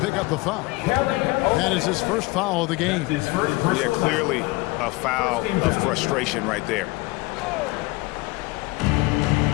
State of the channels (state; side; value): quieter; right; 22.7 dB